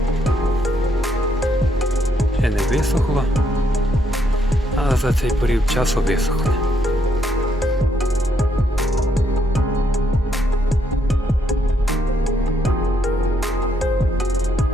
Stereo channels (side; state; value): both; normal; correlation 0.74